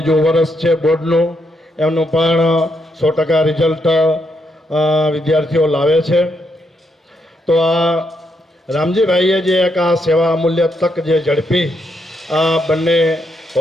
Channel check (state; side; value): normal; both; correlation 0.79